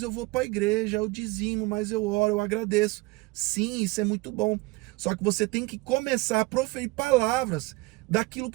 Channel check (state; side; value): quieter; left; 23.1 dB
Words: eu vou para a igreja, eu dizimo, mas eu oro, eu agradeço. Sim, isso é muito bom. Só que você tem que começar a proferir palavras daquilo